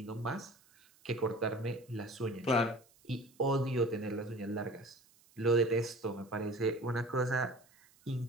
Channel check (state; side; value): noise; right; hiss, 29 dB below the sound